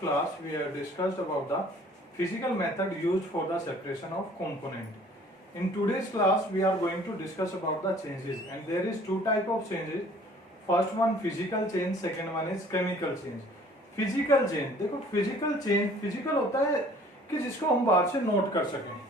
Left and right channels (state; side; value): normal; both; correlation 0.53